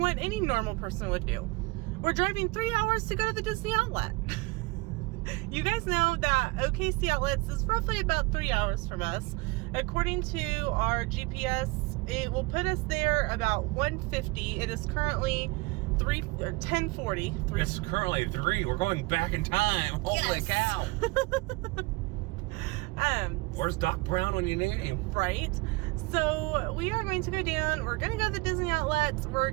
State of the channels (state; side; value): quieter; left; 24.3 dB